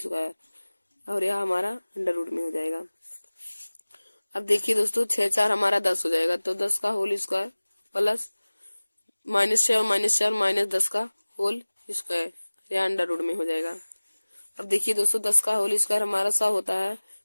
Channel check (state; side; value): inverted; both; correlation -1.00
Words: और यह हमारा अंडर रूट में हो जाएगा। अब देखिए दोस्तों 6 4 हमारा 10 हो जाएगा, तो 10 का होल स्क्वायर प्लस -6 और -4 -10 का होल स्क्वायर, यह अंडर रूट में हो जाएगा। अब देखिए दोस्तों 10 का होल स्क्वायर हमारा 100 होता है,